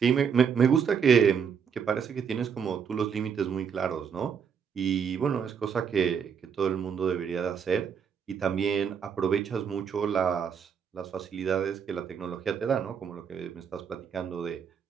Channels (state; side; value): quieter; left; 7.0 dB